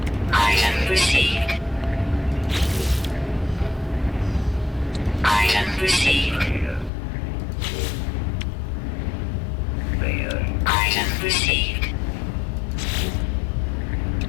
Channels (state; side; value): drops out; right; at 6.9 s